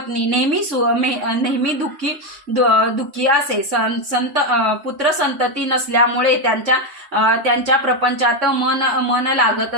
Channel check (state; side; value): late; left; 3.6 ms